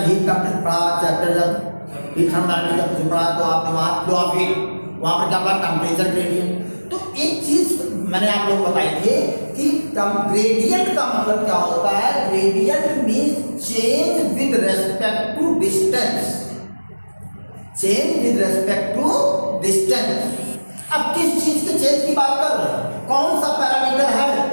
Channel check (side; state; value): both; inverted; correlation -1.00